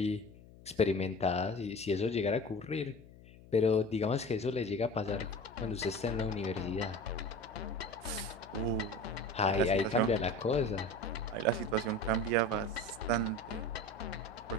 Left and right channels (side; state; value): left; noise; hum, 21 dB below the sound